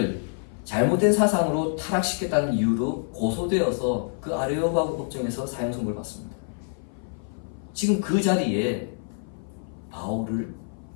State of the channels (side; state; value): right; silent; 57 dB below the other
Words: 잘못된 사상으로 타락시켰다는 이유로 고소되어서 그 아레오바고 법정에서 사형 선고를 받습니다. 지금 그 자리에 바울을